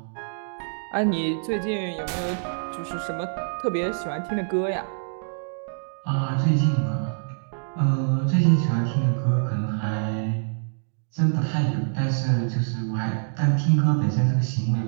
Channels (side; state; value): left; silent; digital silence